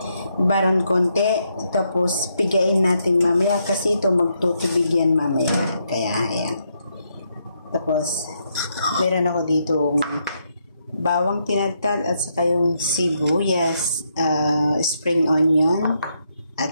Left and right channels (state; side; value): inverted; both; correlation -0.78